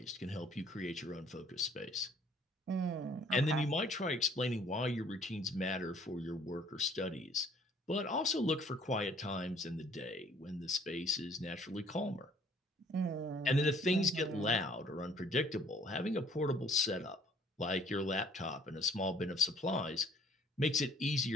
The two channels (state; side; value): normal; both; correlation 0.57